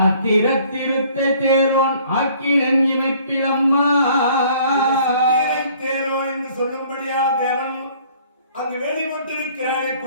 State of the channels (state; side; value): inverted; both; correlation -0.56